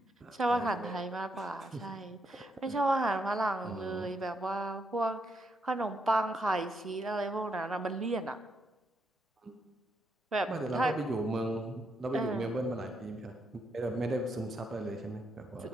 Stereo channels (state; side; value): normal; both; correlation 0.78